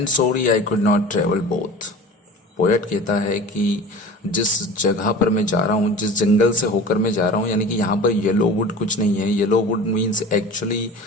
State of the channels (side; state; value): both; normal; correlation 0.37